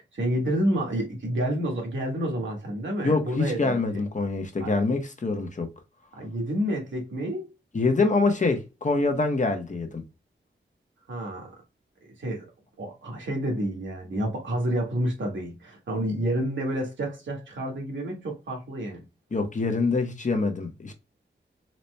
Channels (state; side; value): normal; both; correlation 0.64